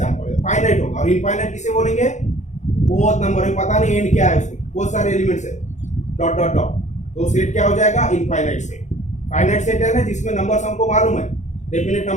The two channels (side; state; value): right; late; 0.34 ms